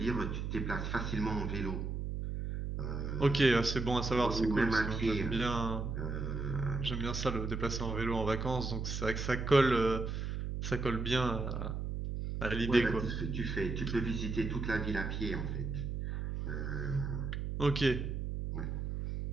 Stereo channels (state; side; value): noise; right; hum, 3 dB below the sound